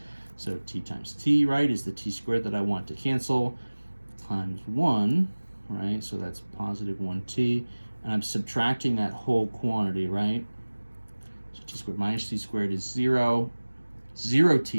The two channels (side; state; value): both; inverted; correlation -1.00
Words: So t times t, right, is the t squared that I want to cancel, times 1, right? So that's positive 1t, and I'm subtracting that whole quantity, right? So t squared minus t squared is 0.